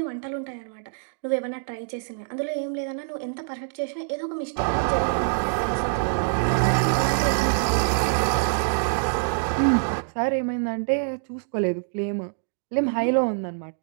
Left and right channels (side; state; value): left; silent; digital silence